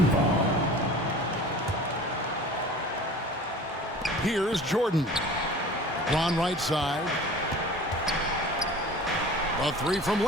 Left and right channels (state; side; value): normal; both; correlation 0.41